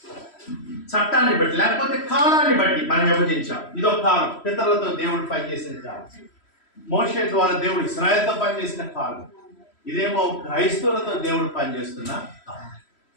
చట్టాన్ని బట్టి లేకపోతే కాలాన్ని బట్టి మనం విభజించాం. ఇదొక కాలం, పితరులతో దేవుడు పనిచేసిన కాలం. మోషే ద్వారా దేవుడు ఇశ్రాయేలుతో పనిచేసిన కాలం. ఇదేమో క్రైస్తవులతో దేవుడు పనిచేస్తున్న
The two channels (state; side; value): late; right; 3.1 ms